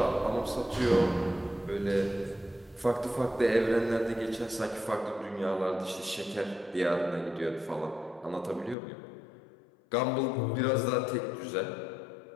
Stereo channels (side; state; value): right; drops out; at 8.8 s